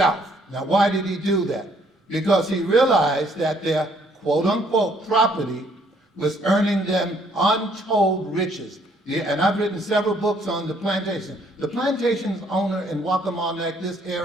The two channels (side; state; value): both; normal; correlation 0.65